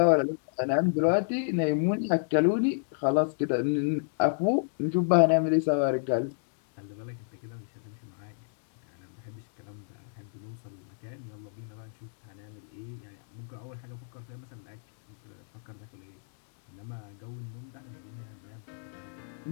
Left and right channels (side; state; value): right; silent; digital silence